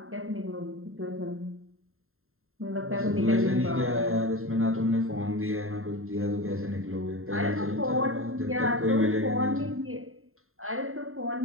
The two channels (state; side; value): late; left; 0.61 ms